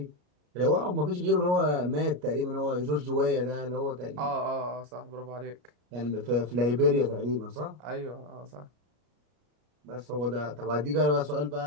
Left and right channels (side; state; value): left; late; 33 ms